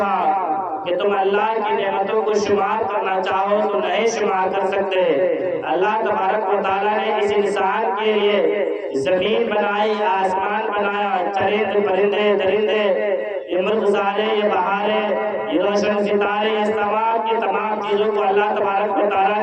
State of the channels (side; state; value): both; identical; correlation 1.00